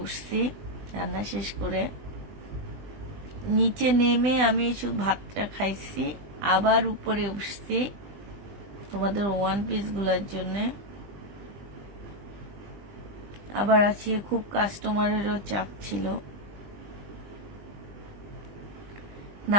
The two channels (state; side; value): late; left; 20 ms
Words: উঠছি, রান্না শেষ করে নিচে নেমে আমি শুধু ভাতটা খাইছি, আবার উপরে উঠছি তোমাদের ওয়ান পিস গুলার জন্য। আবার আজকে খুব কাস্টমারেরও চাপ ছিল।